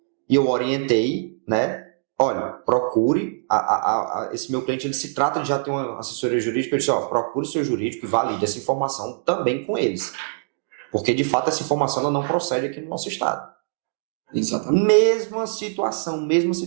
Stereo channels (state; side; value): silent; left; digital silence